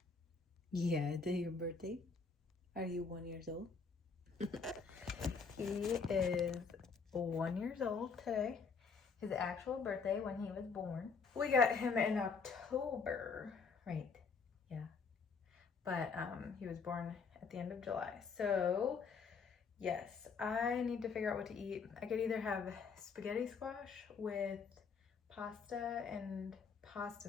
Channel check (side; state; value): right; quieter; 5.2 dB